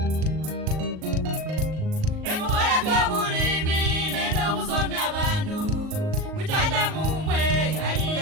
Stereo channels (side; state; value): left; late; 38 ms